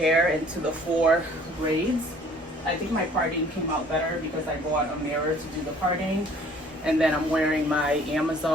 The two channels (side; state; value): both; normal; correlation 0.55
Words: into the 4 braids. I think my parting came out better because I bought a mirror to do the parting. And then I'm wearing my